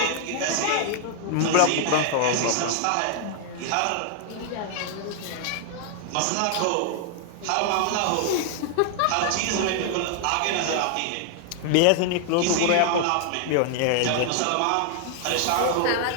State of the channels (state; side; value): different; both; correlation 0.00